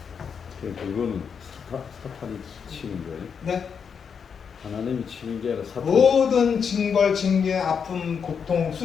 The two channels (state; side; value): quieter; right; 6.6 dB